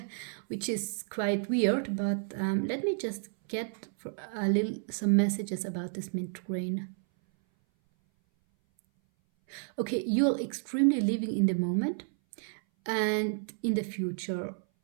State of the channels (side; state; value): left; silent; 57 dB below the other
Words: Which is quite weird, but let me just get some messages about this mint green. Okay, you're extremely living in the moment and in the future.